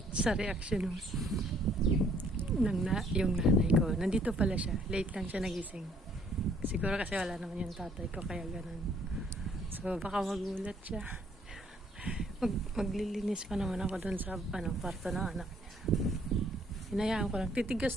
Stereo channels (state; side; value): normal; both; correlation 0.63